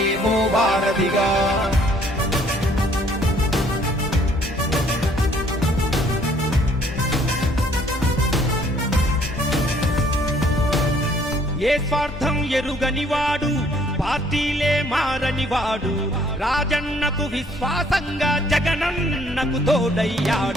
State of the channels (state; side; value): normal; both; correlation 0.61